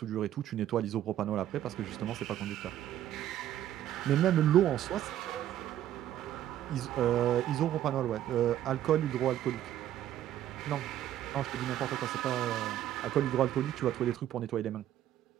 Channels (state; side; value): quieter; left; 12.0 dB